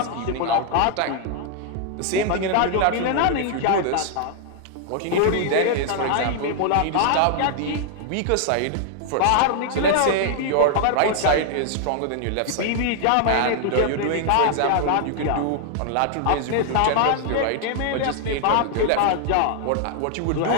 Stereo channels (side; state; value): both; different; correlation -0.01